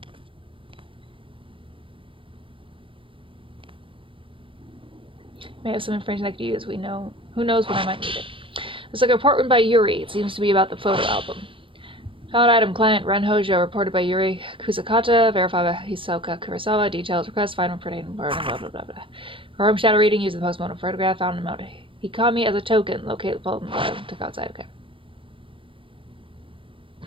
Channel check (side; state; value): left; late; 0.25 ms